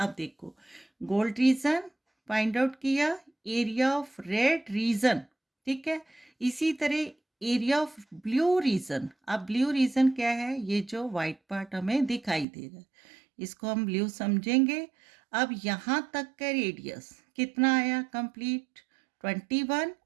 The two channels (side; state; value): left; drops out; at 12.5 s